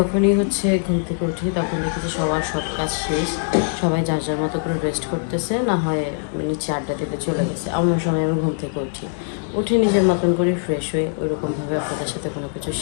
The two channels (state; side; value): silent; right; digital silence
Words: হচ্ছে ঘুম থেকে উঠি তখন দেখি যে সবার সব কাজ শেষ, সবাই যার যার মতো করে রেস্ট করতেছে, না হয় নিচে আড্ডা দিতে চলে গেছে। আমার সময় আমি ঘুম থেকে উঠে নিজের মতন করে ফ্রেশ হয়ে ওইরকমভাবে আপনাদের সাথে কোনো কিছু